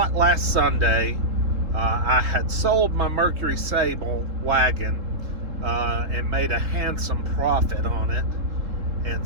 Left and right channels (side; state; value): left; late; 3.7 ms